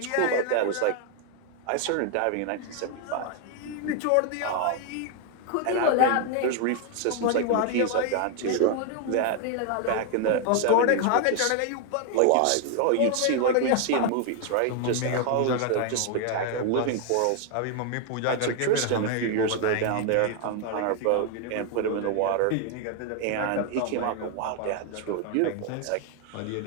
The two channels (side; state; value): both; different; correlation 0.00